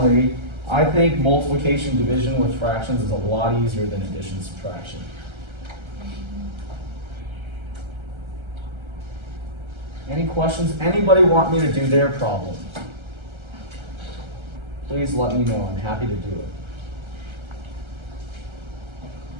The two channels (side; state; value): left; late; 1.3 ms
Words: I think multiplication division with fractions is a lot easier than addition subtraction. Any questions? Anybody want me to do their problem? Please let me know. I'm happy to do it.